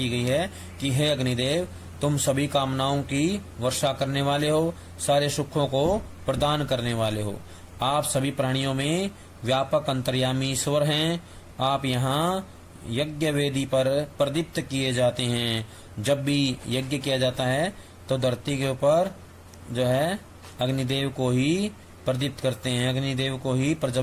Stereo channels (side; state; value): both; identical; correlation 1.00